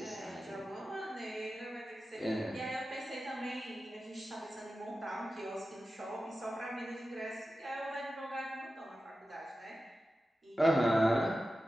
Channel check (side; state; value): both; normal; correlation 0.93